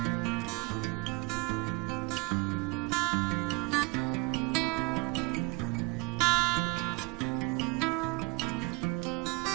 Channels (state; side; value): quieter; left; 26.5 dB